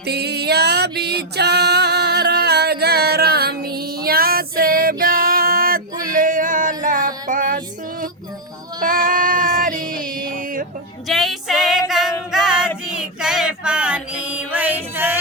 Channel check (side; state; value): both; normal; correlation -0.02